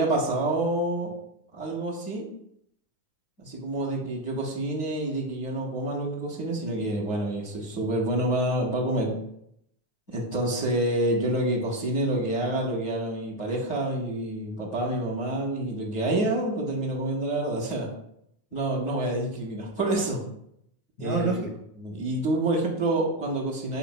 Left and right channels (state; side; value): late; right; 9.6 ms